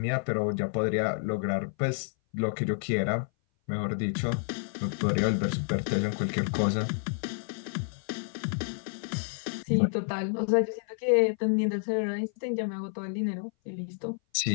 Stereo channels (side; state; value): right; silent; 57 dB below the other